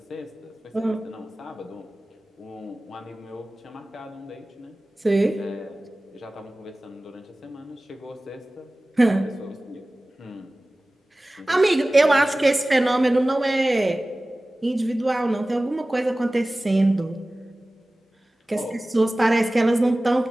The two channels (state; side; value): normal; both; correlation 0.97